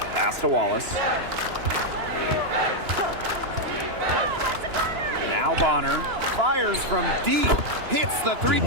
Pass to Wallace. Now Bonner fires from deep. Hits the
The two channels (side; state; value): left; late; 2.9 ms